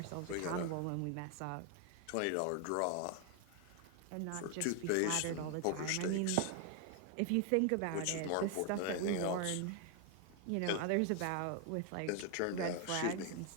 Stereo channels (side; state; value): both; different; correlation 0.00